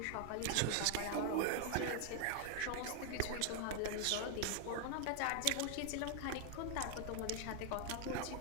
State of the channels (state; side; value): different; both; correlation 0.00